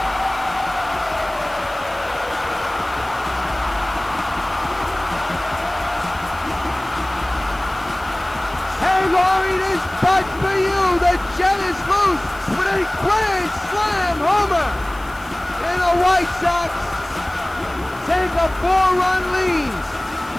LOWRIE, this putt for you. The Jet is loose with a grand slam homer. And the White Sox take a 4-run lead.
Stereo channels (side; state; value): left; noise; hiss, 24 dB below the sound